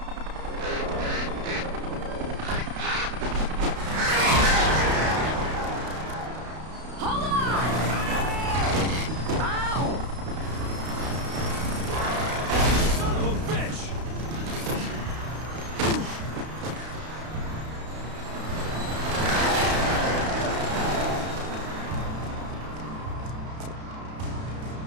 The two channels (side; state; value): left; late; 32 ms